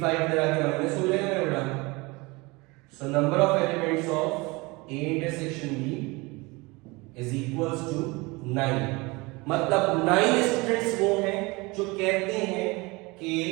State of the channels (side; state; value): left; quieter; 24.8 dB